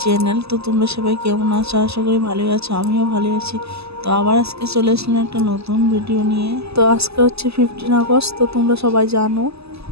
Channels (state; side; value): late; left; 0.79 ms